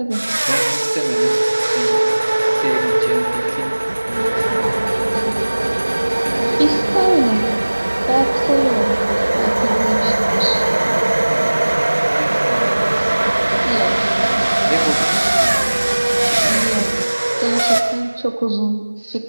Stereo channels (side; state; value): both; inverted; correlation -1.00